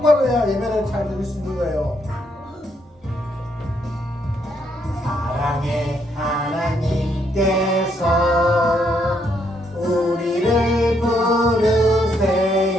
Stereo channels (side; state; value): both; normal; correlation 0.74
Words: 해야 예배를 잘 드릴 수 있는 거예요. 사랑의 하나님께서 우리를